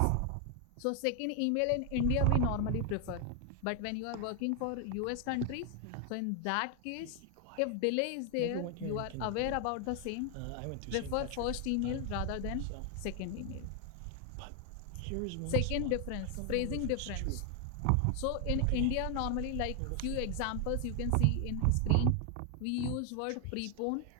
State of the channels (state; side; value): different; both; correlation 0.00